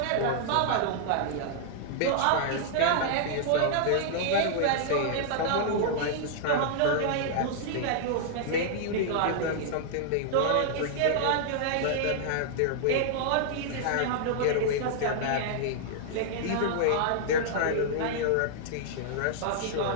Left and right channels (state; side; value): different; both; correlation -0.01